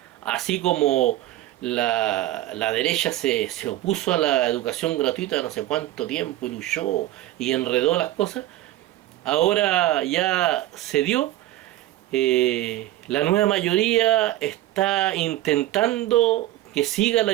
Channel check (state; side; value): quieter; left; 15.0 dB